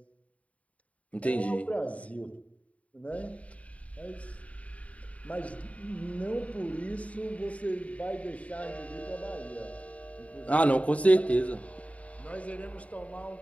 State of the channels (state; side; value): late; right; 0.067 ms